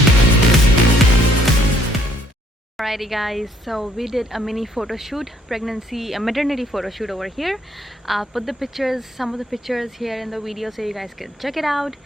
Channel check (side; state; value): both; normal; correlation 0.65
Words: Alrighty guys, so we did a mini photo shoot, maternity photo shoot over here. I'll put the pictures, some of the pictures here in the video so you guys can check it out.